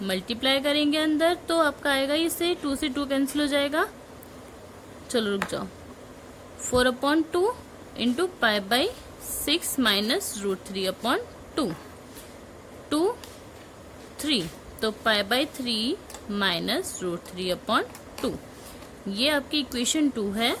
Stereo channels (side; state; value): both; identical; correlation 1.00